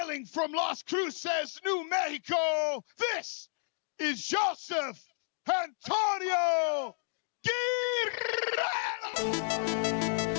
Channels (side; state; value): right; silent; digital silence